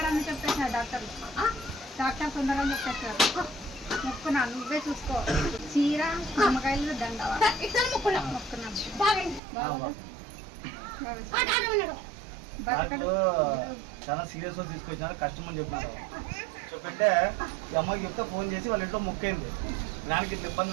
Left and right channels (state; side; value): drops out; left; at 9.4 s